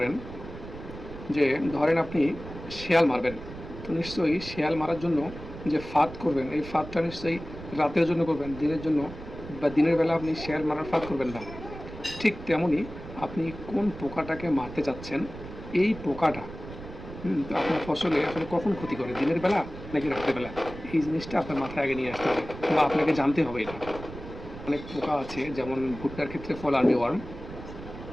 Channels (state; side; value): noise; right; rumble, 13 dB below the sound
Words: যে ধরেন আপনি শেয়াল মারবেন। তো নিশ্চয়ই শেয়াল মারার জন্য যে ফাঁদ করবেন, এই ফাঁদটা নিশ্চয়ই রাতের জন্য করবেন। দিনের জন্য বা দিনের বেলা আপনি শেয়াল মারার ফাঁদ করবেন না। ঠিক তেমনই আপনি কোন পোকাটাকে মারতে চাচ্ছেন, এই পোকাটা তো আপনার ফসলে আসলে কখন ক্ষতি করে? দিনের বেলা নাকি রাতের বেলা? এই জিনিসটা আপনার মাথায় আগে নিয়ে আসতে হবে বা আপনাকে জানতে হবে এটা। অনেক পোকা আছে যেমন ভুট্টার ক্ষেত্রে ফল আর্মি ওয়ার্ম,